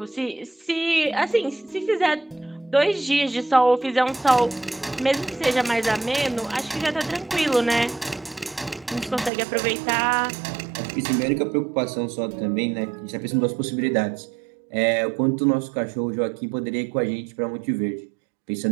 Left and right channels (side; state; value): left; drops out; at 9.3 s